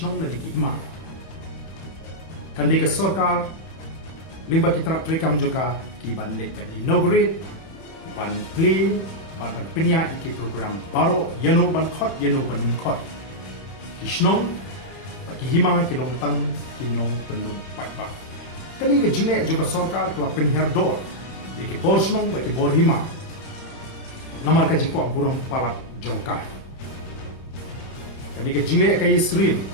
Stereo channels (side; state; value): right; late; 31 ms